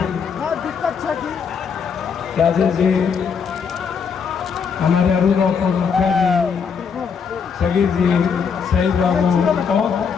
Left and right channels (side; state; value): right; quieter; 6.3 dB